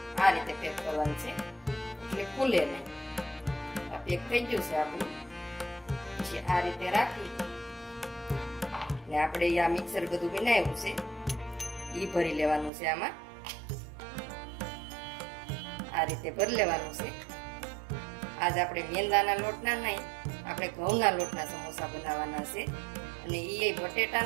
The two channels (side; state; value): left; drops out; at 12.7 s